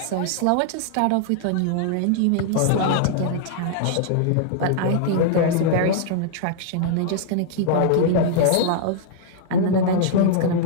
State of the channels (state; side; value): different; both; correlation -0.01